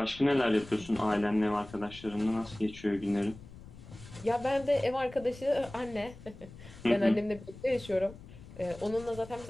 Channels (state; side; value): noise; left; rumble, 17 dB below the sound